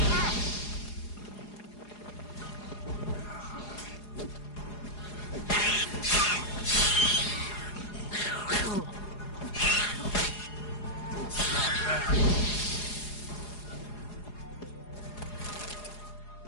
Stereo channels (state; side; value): late; right; 4.8 ms